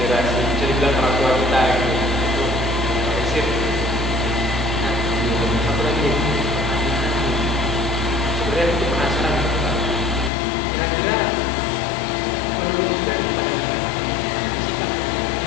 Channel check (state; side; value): drops out; right; at 10.3 s